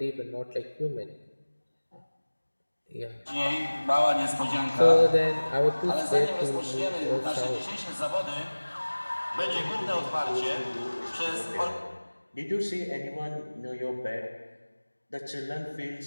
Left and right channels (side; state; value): both; inverted; correlation -1.00